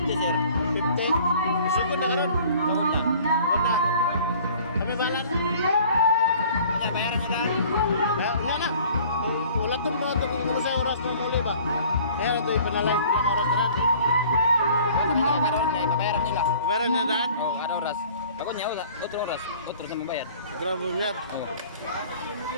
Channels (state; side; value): inverted; both; correlation -0.51